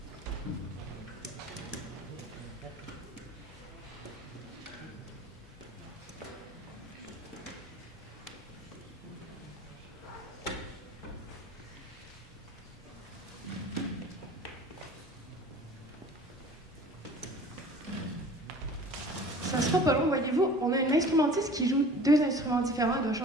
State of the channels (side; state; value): both; normal; correlation 0.45